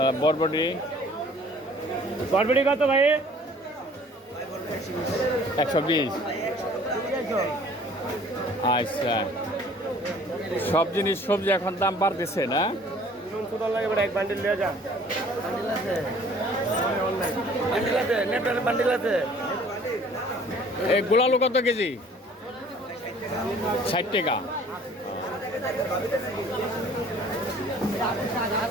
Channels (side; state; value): both; normal; correlation 0.53